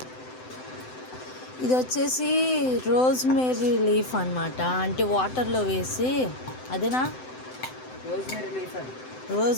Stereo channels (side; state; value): right; late; 7.8 ms